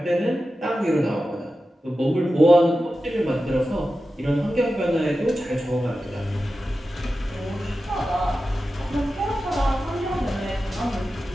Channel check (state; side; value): normal; both; correlation 0.93